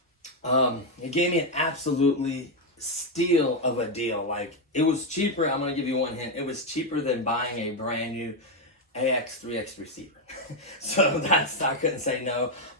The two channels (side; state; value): both; normal; correlation 0.04